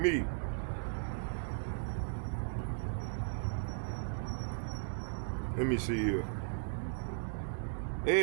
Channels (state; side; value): silent; left; digital silence